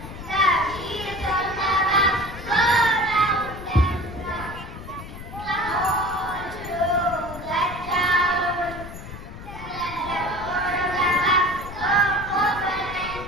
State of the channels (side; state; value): left; noise; rumble, 12 dB below the sound